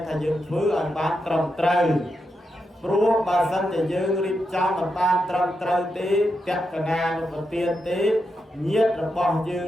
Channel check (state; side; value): normal; both; correlation 0.85